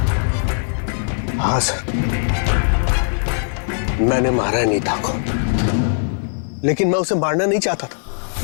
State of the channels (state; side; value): silent; right; 56 dB below the other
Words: हाँ सर, मैंने मारा है नीता को। लेकिन मैं उसे मारना नहीं चाहता था।